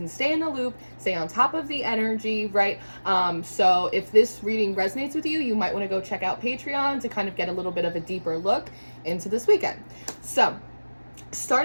stay in the loop, stay on top of the energy, right? So if this reading resonates with you, you might want to go check out Patreon to kind of get a little bit of a deeper look into this weekend. So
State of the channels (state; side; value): inverted; both; correlation -1.00